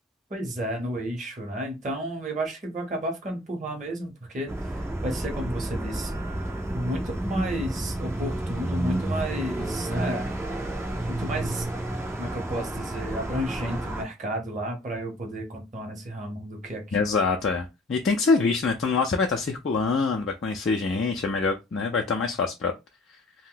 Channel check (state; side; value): normal; both; correlation 0.56